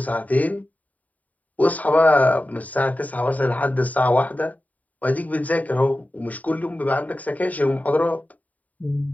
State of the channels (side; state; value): right; late; 0.073 ms